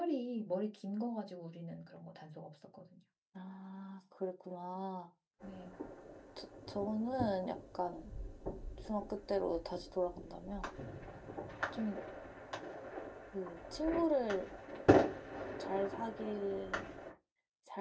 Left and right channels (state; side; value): identical; both; correlation 1.00